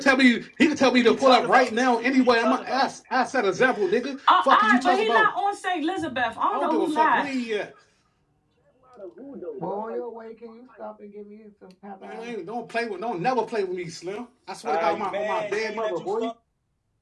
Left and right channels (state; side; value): identical; both; correlation 1.00